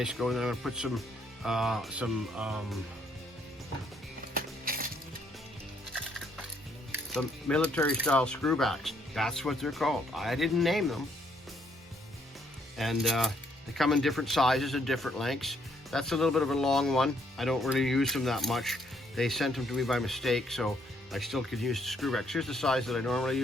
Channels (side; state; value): both; normal; correlation 0.69